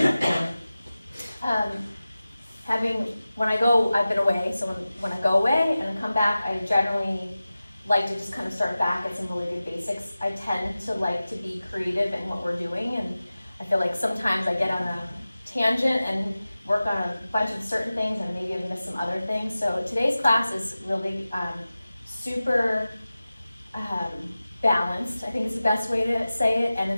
been away, so when I go away and I come back, I generally like to just kind of start back at some really good basics. I tend to like to be creative in what we're doing, and I feel like sometimes I get on a tangent and work on a bunch of certain things and maybe I've missed some other things. So today's class is really super balanced, I think is the best way to say it, and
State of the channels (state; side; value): inverted; both; correlation -0.96